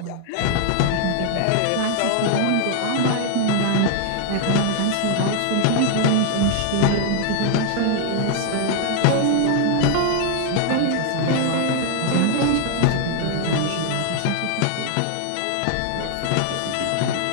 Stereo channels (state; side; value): different; both; correlation 0.00